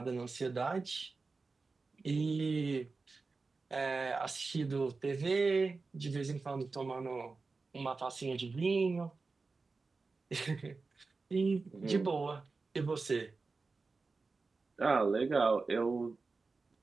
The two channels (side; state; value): left; quieter; 4.1 dB